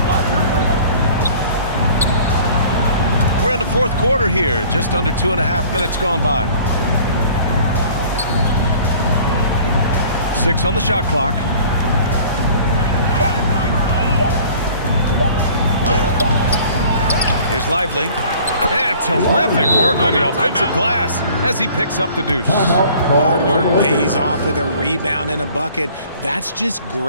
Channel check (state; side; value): inverted; both; correlation -0.50